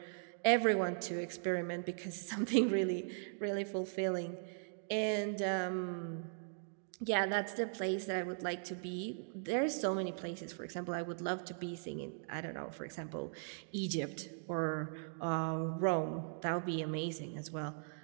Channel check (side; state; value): left; silent; digital silence